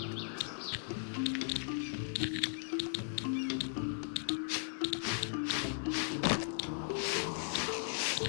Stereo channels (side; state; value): right; silent; 53 dB below the other